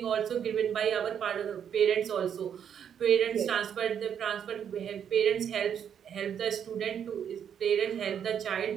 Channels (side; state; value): left; quieter; 8.5 dB